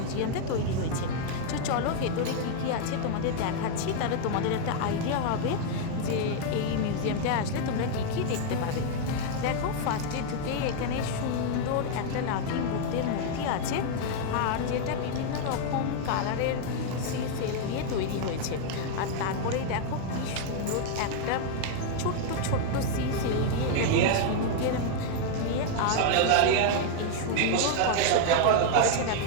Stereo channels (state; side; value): different; both; correlation 0.00